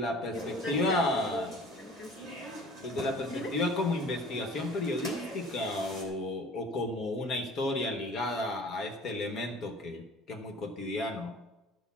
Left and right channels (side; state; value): both; normal; correlation 0.46